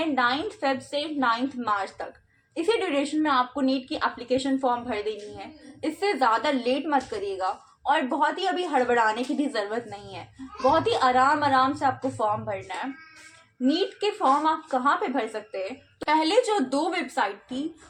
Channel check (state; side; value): identical; both; correlation 1.00